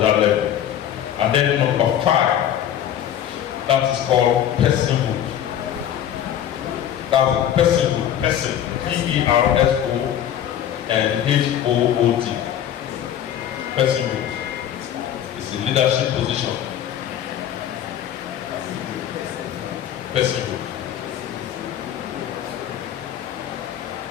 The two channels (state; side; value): quieter; right; 10.4 dB